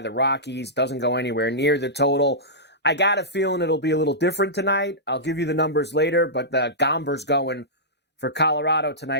the Rockies. Doesn't go anywhere near the total. I got a feeling it'll be a little different tonight. I'll give you the numbers later, but the Gomber's going for Colorado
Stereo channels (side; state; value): both; normal; correlation -0.15